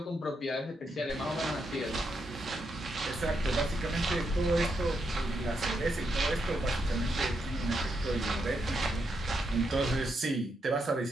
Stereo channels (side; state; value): both; normal; correlation 0.81